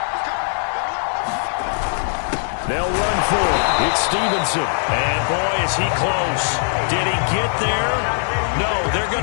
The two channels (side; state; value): right; silent; 65 dB below the other